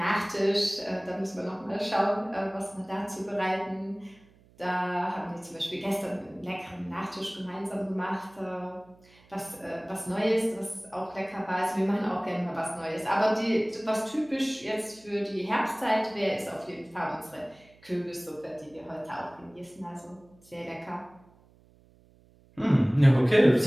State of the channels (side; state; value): right; noise; hum, 28 dB below the sound